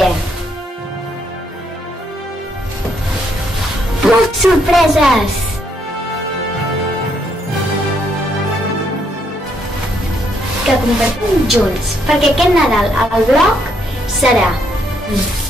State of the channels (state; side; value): normal; both; correlation 0.73